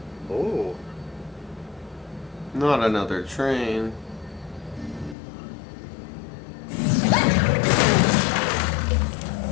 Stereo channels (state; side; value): drops out; right; at 5.2 s